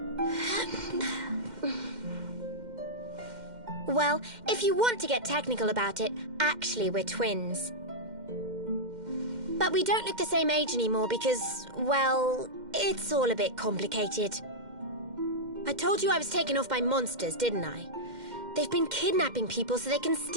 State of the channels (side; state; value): left; late; 2.1 ms